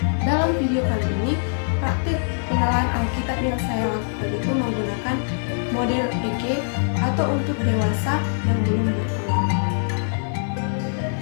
dalam video kali ini praktek penalaran Alkitab yang saya lakukan itu menggunakan model PG atau untuk dewasa yang belum berkeluarga.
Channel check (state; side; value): silent; right; 63 dB below the other